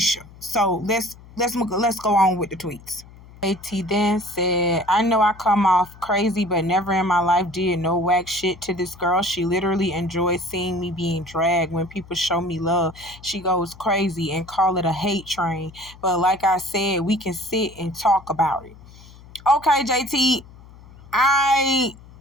So let's go on with the tweets. JT then said, "I know I come off crazy, but never in my life did no whack shit to this girl. She literally enjoys seeing me being dragged. When people show me love, she goes crazy and call it a hate train. But like I said, we can sit and talk about it." Okay, JT, I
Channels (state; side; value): noise; left; hum, 21 dB below the sound